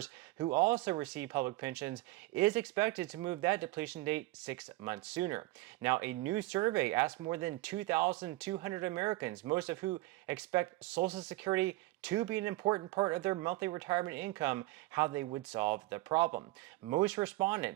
who also receive public pensions, is expected to move that depletion date 6 months sooner. Now, a new survey asked more than 2,200 Americans, most of who expect Social Security to be an important part of their monthly retirement income, how they would solve the problem. Most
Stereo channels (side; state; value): left; quieter; 19.4 dB